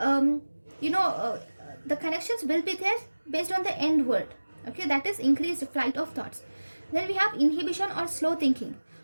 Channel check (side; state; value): both; inverted; correlation -1.00